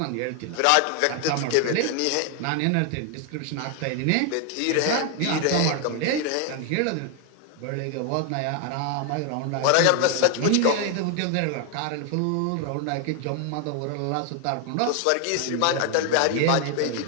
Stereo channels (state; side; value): different; both; correlation 0.00